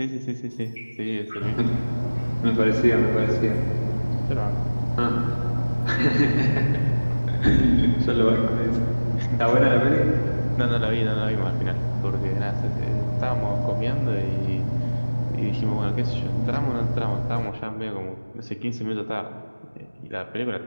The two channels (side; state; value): both; inverted; correlation -1.00